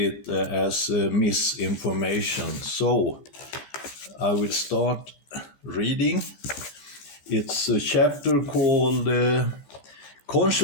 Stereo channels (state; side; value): late; right; 15 ms